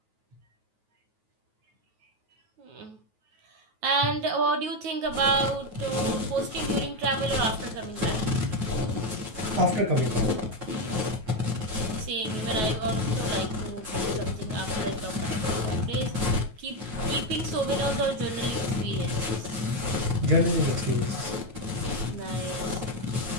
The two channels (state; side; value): late; left; 9.3 ms